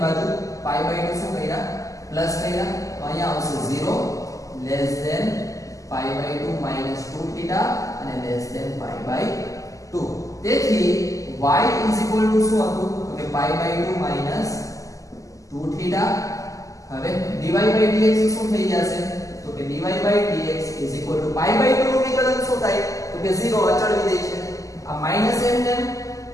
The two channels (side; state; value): right; late; 0.16 ms